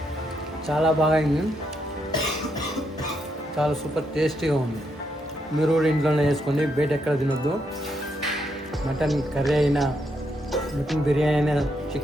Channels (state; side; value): normal; both; correlation 0.78